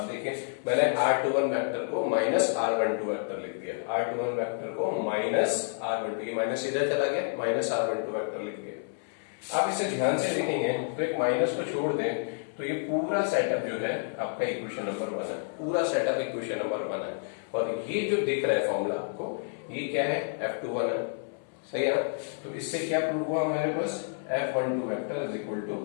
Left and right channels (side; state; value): right; silent; 58 dB below the other